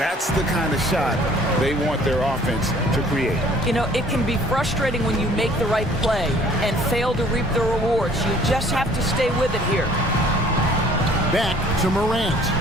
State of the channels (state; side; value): normal; both; correlation 0.55